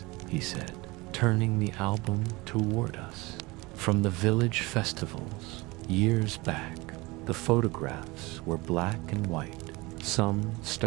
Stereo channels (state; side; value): quieter; left; 23.2 dB